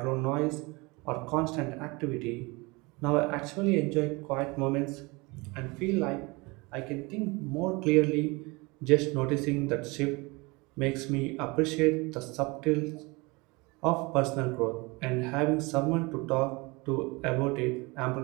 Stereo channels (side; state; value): left; quieter; 25.7 dB